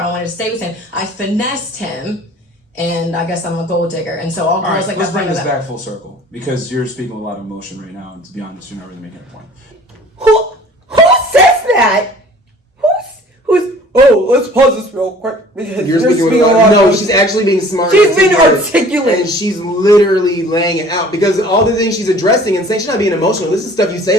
wanted to stay with him. I finessed him, and I guess I'm a gold digger. And so all girls All right, like let's that. bring this back full circle because you're speaking with a lot of emotion right now, and to be honest, you're not really making a point. Who says that? Who's? Oh, let's pause this real quick. You're speaking with a lot. No, she's actually being smart. She's being articulate. And she's literally laying it out because all the things she's addressing and saying she's not being emotional. This is stuff you say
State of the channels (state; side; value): normal; both; correlation 0.49